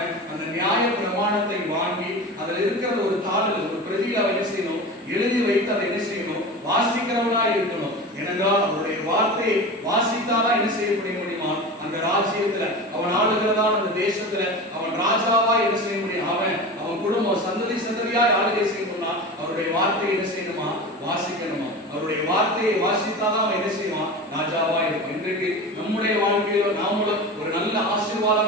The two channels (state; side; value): normal; both; correlation 0.30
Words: அந்த நியாய பிரமாணத்தை வாங்கி அதில் இருக்கிற ஒரு தாளில் ஒரு பிரதியில் அவன் என்ன செய்யணும், எழுதி வைத்து அதை என்ன செய்யணும், வாசிக்கிறவனா இருக்கணும். ஏனென்றால் அவருடைய வார்த்தையை வாசித்தாதான் என்ன செய்ய முடியுமா, அந்த ராஜ்யத்துல அவன் ஆளுகிறதான அந்த தேசத்துல அவன் ராஜாவா என்ன செய்ய முடியும். அவன் குடும்பம் சந்ததி சந்ததியாய் ஆளுகை செய்யணும்னா அவருடைய வார்த்தையை என்ன செய்யணுமா, வாசிக்கணுமா. அவருடைய வார்த்தையை வாசித்தாதான் அவன் என்ன செய்வான், ராஜாவா இருக்கும். இன்றைக்கு நம்முடைய வாழ்க்கையில நாமளும் ஒரு நல்ல